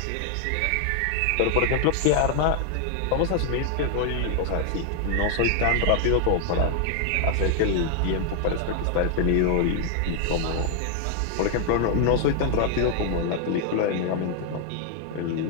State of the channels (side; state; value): both; different; correlation 0.00